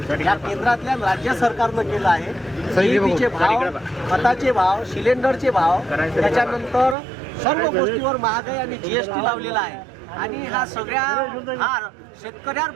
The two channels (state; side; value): drops out; left; at 7.0 s